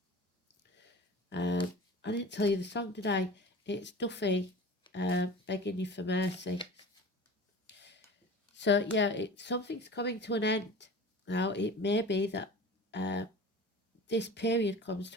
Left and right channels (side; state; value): both; normal; correlation 0.37